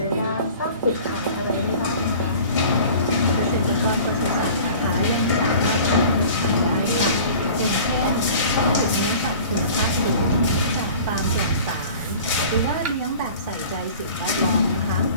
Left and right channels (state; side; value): inverted; both; correlation -0.44